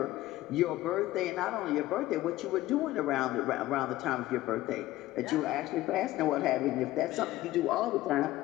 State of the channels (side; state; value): right; quieter; 16.3 dB